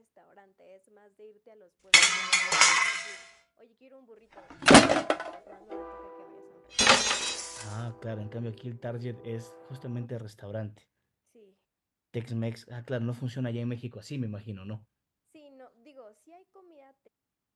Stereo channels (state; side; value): identical; both; correlation 1.00